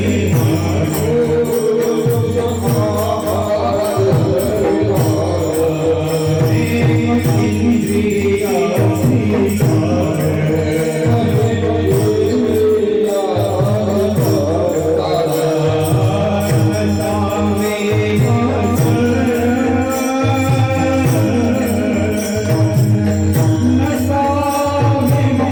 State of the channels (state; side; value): identical; both; correlation 1.00